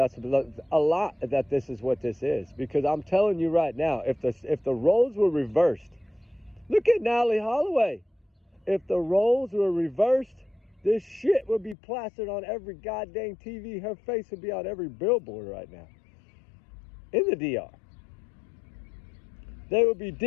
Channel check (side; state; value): right; drops out; at 11.8 s